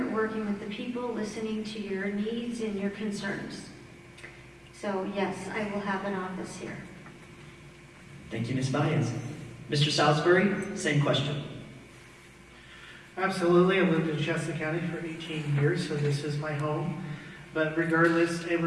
working with the people, listening to your needs and your concerns. So yes, I will have an office here. Thank you, Ms. Valles. Mr. Saulsbury, same question. Absolutely. I've lived in Shasta County for 18 years, so this is my home. But regardless,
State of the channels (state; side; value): identical; both; correlation 1.00